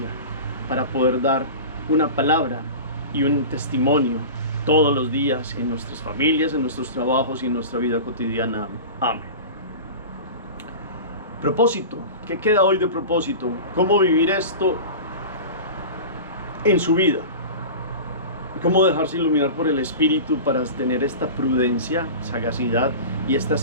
para poder dar una palabra y un testimonio todos los días en nuestras familias, en nuestros trabajos y en nuestra vida cotidiana. Amén. Propósito. ¿Qué queda hoy de propósito? ¿Cómo vivir esto en su vida? ¿Cómo dejarse iluminar por el Espíritu para tener esta prudencia, sagacidad y esta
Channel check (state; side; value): inverted; both; correlation -0.32